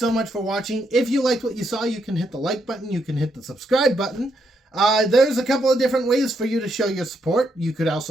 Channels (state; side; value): normal; both; correlation 0.78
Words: much for watching. If you liked what you saw, you can hit the like button. You can hit the subscribe button. There's a couple of different ways for you to show your support. You could